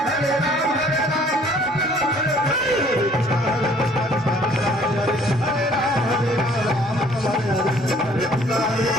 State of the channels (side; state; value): both; normal; correlation 0.57